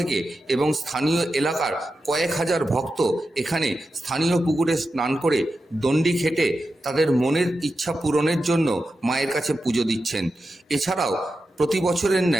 এবং স্থানীয় এলাকার কয়েক হাজার ভক্ত এখানে স্থানীয় পুকুরে স্নান করে দণ্ডি খেটে তাদের মনের ইচ্ছা পূরণের জন্য মায়ের কাছে পুজো দিচ্ছেন। এছাড়াও প্রতি বছরের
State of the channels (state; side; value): normal; both; correlation 0.90